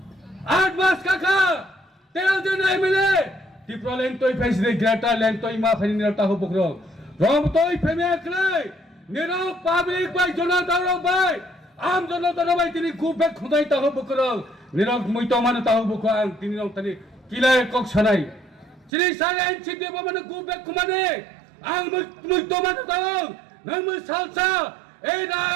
8 মাস কাকা 13 জন MLA Tiprasa lentoi faisre grata lentoi ma faini taho bukro rom toi feme aklai nero public bai jona daro bai am jona daro bai tini kubbe khudai taho bukro nero muito mane taho bukro ang tini rong tani kilai kok sanai chini sare enchide bo mane kubbe khumane ang muito mane taho nang mu salsa ei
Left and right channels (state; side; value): drops out; left; at 18.9 s